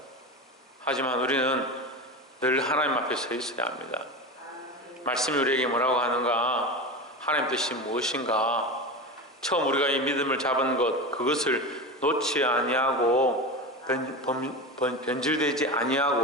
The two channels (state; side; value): normal; both; correlation 0.24